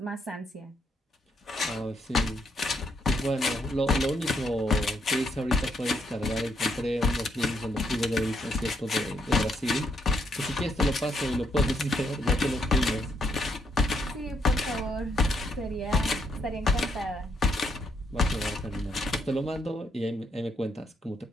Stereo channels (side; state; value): both; normal; correlation 0.76